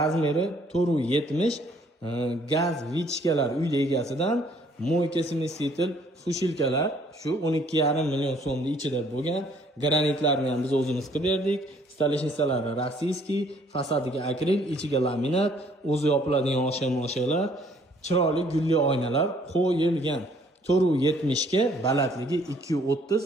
470, gaz vichkalar uyda egasidan, moyka smesitel fushilkalar shu 12,5 million so'mning ichida bo'lgan. Granitlarni ham biz o'zimiz qilib berdik. Stoleshnisalari rossiyskiy, fasadiga akril, ichiga laminat, o'zi yopiladigan osha-moshalar, chiroyli gulli oynalar qo'yilgan. 470 ga, balandligi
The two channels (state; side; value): normal; both; correlation 0.62